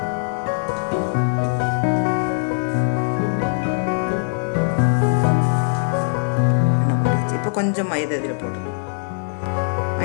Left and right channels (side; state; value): right; silent; 65 dB below the other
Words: கொஞ்சம் மைதா இதில் போட்டுக்கணும்.